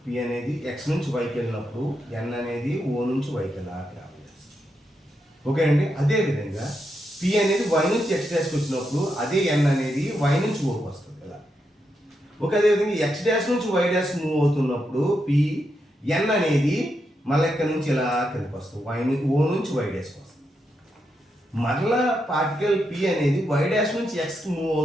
అనేది x నుంచి yకి వెళ్ళినప్పుడు n అనేది o నుంచి yకి వెళ్ళాలి. ఓకే అండి. అదేవిధంగా p అనేది y నుంచి x డాష్కి వచ్చినప్పుడు అదే n అనేది y నుంచి ఓకి వస్తుంది కదా. ఓకే, అదేవిధంగా x డాష్ నుంచి y డాష్ మూవ్ అవుతున్నప్పుడు p n అనేది మళ్ళీ ఇక్కడ నుంచి ఇలా కిందకి వస్తుంది, o నుంచి y డాష్కి వస్తుంది. మరలా పార్టికల్ p అనేది y డాష్ నుంచి x మూవ్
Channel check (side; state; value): both; normal; correlation 0.84